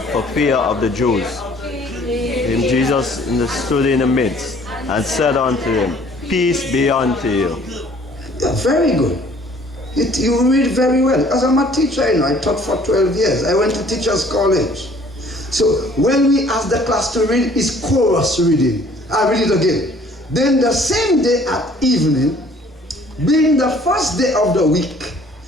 for fear of the Jews, and Jesus stood in the midst and said unto them, Peace be unto you. Yeah, very good. You read very well. As I'm a teacher, I taught for 12 years. I went to teachers' college. So when we ask the class to read, it's chorus reading. I read it again. Then the same day at evening, being the first day of the week,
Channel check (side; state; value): both; normal; correlation 0.56